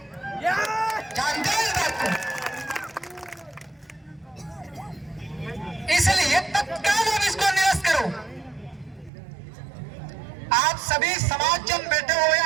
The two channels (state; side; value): drops out; left; at 9.1 s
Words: जानते हो इस बात को? इसलिए तत्काल अब इसको निरस्त करो। आप सभी समाज जन बैठे हुए,